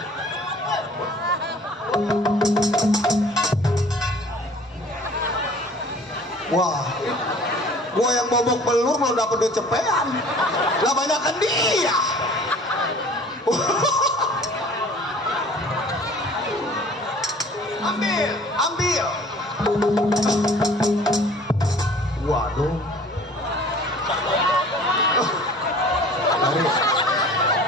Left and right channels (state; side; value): normal; both; correlation 0.49